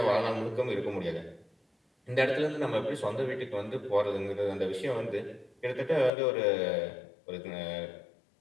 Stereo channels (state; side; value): drops out; right; at 6.1 s